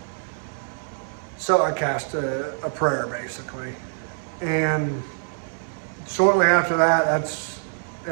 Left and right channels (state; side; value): silent; left; digital silence